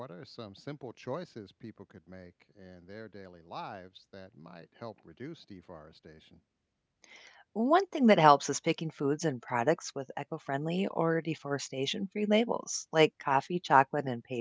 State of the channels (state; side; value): identical; both; correlation 1.00